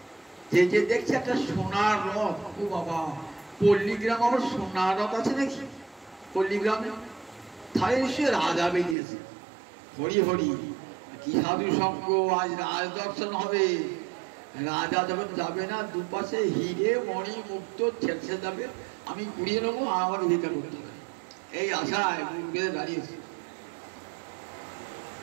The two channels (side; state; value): left; drops out; at 9.0 s